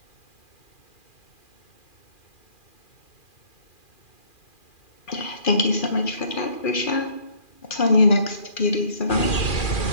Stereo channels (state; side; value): late; right; 2.4 ms